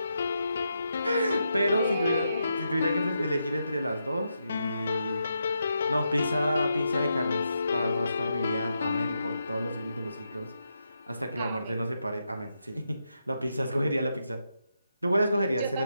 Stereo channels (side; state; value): both; inverted; correlation -0.83